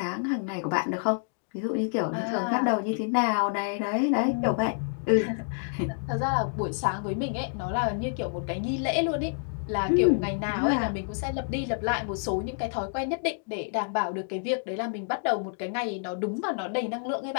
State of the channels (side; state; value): right; silent; digital silence